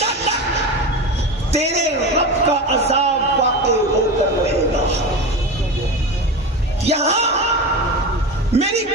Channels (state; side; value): normal; both; correlation 0.25